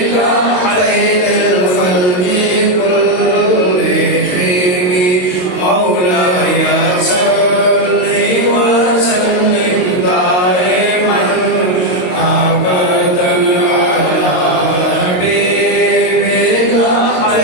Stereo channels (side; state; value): right; late; 22 ms